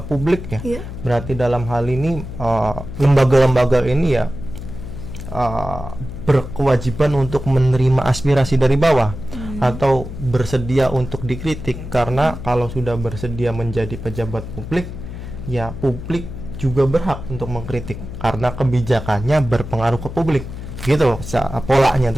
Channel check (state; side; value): noise; left; hum, 10 dB below the sound